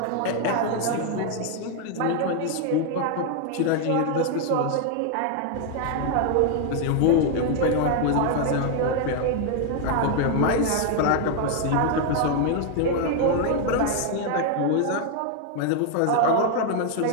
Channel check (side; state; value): both; different; correlation 0.00